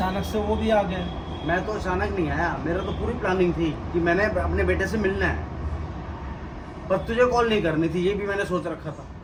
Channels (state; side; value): identical; both; correlation 1.00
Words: से वो भी आ गए। मैं तो अचानक नहीं आया, मेरा तो पूरी प्लानिंग थी कि मैंने अपने बेटे से मिलना है, पर तुझे कॉल नहीं करनी थी, ये भी मैंने सोच रखा था।